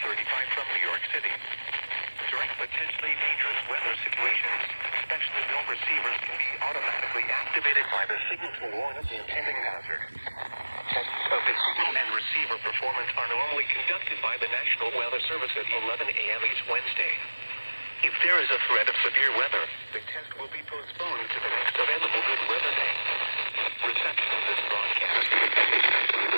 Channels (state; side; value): inverted; both; correlation -1.00